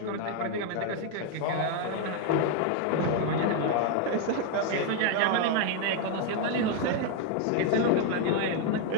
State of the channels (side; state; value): both; different; correlation 0.00